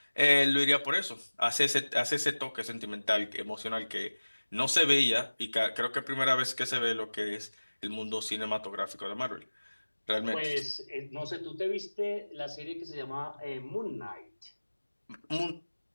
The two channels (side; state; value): both; inverted; correlation -1.00